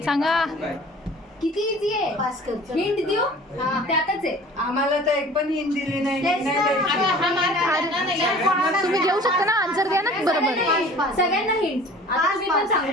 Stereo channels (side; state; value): both; normal; correlation 0.45